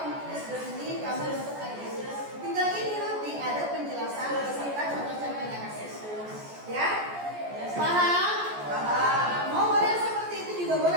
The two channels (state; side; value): late; left; 14 ms